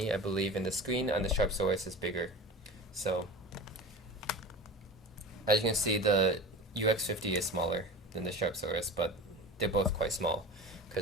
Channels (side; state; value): both; normal; correlation 0.32